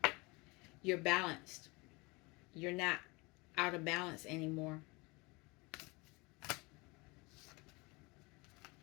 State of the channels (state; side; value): quieter; right; 26.1 dB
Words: You're balanced. You're not out of balance anymore.